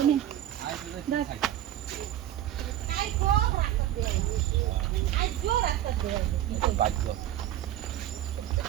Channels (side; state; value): left; quieter; 12.4 dB